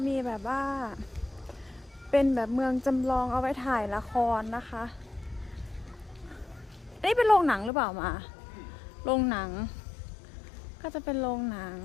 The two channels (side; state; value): right; drops out; at 7.7 s